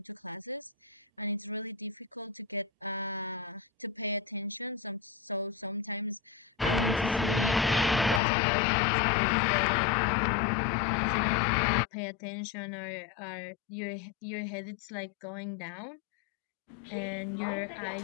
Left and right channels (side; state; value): right; drops out; at 8.2 s